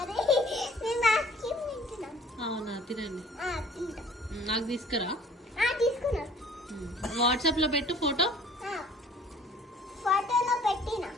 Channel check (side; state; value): both; normal; correlation 0.52